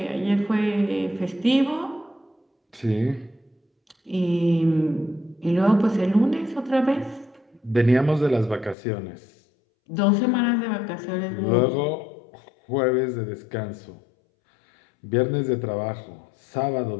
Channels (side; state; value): right; drops out; at 8.8 s